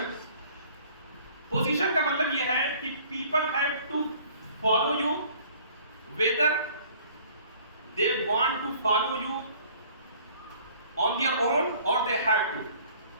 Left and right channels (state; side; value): inverted; both; correlation -0.54